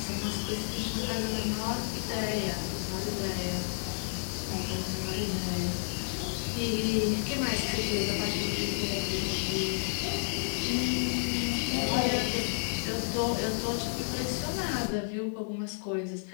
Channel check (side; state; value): right; silent; digital silence